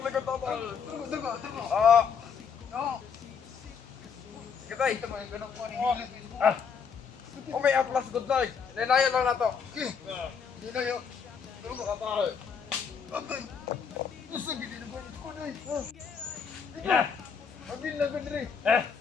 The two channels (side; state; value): right; quieter; 6.3 dB